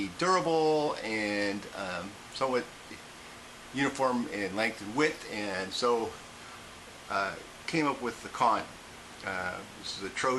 durable and somewhat uniform in length and width, and so came up with the con. This is a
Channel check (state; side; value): identical; both; correlation 1.00